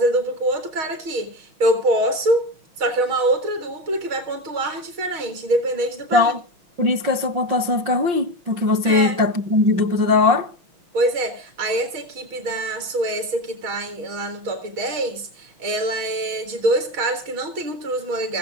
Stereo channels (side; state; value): left; late; 6.3 ms